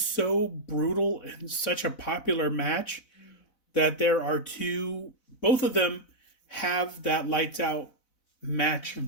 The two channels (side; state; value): right; late; 4.0 ms